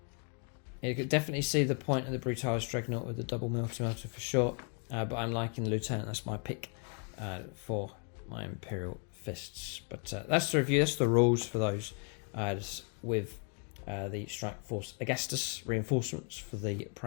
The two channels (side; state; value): right; quieter; 39.6 dB